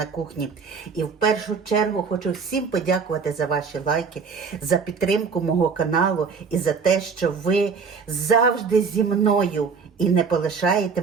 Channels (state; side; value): quieter; left; 5.4 dB